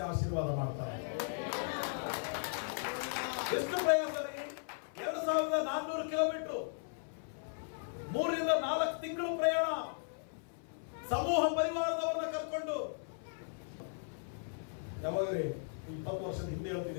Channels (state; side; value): silent; right; 53 dB below the other